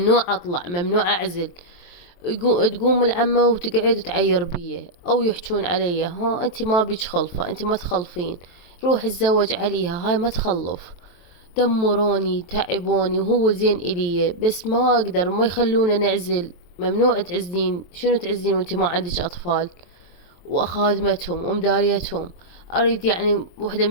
أطلع، ممنوع أعزل. تقوم العمة وتقعد وتعير بيه أو يحجون علي، ها أنت ما بيج خلفة، أنت ما تخلفين، روح اتزوج عليها، هاي ما تخلف. دمروني تعبوني، وهو زين إلي بس ما أقدر، ما يخلونا نعزل. ممنوع تعزلين، شنو تعزلين وانت ما عندك أطفال وأخادمتهم ومداريتهم؟ أريد يعني وحدة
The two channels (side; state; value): right; late; 23 ms